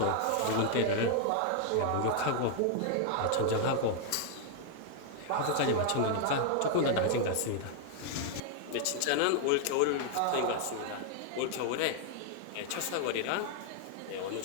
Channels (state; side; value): different; both; correlation 0.00